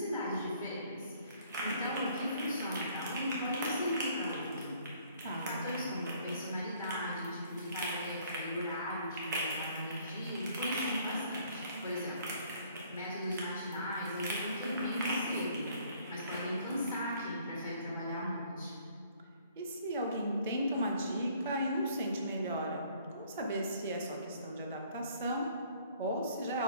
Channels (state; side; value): inverted; both; correlation -0.60